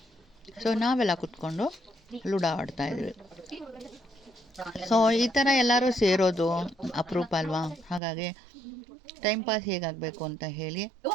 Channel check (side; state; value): left; drops out; at 8.0 s